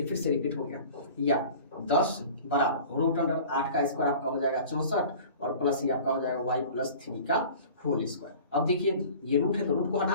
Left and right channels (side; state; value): both; inverted; correlation -0.43